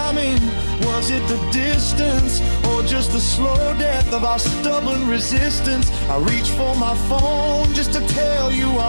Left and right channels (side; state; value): both; inverted; correlation -1.00